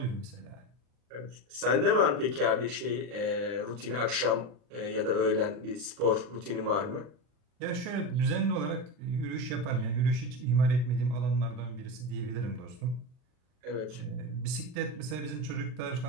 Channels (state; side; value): late; left; 40 ms